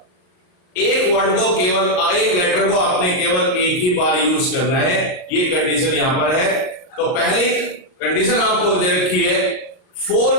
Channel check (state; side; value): late; right; 39 ms